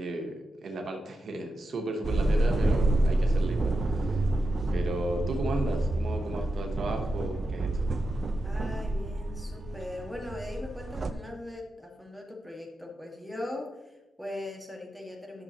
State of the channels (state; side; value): normal; both; correlation 0.89